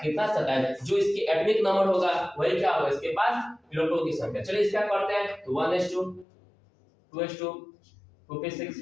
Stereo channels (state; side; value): drops out; right; at 6.2 s